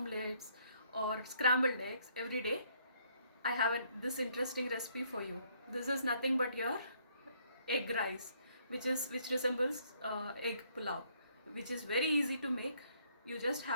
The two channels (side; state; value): both; inverted; correlation -0.67